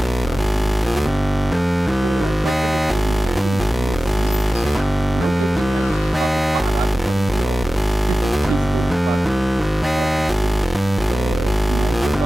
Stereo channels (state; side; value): normal; both; correlation 0.96